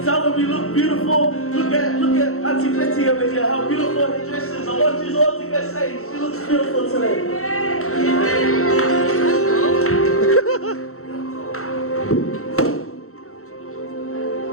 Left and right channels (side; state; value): right; late; 0.63 ms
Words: Tell them you look beautiful. Look at Auntie Betty over here. How beautiful her dress is. I want you all to get saved. She looks beautiful today.